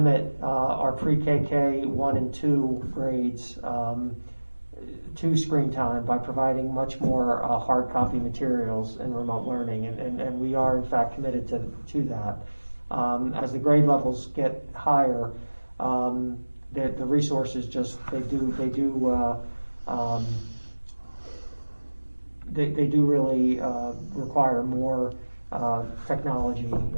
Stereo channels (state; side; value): inverted; both; correlation -1.00